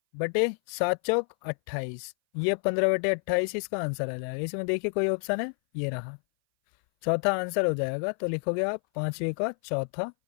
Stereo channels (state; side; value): silent; right; 57 dB below the other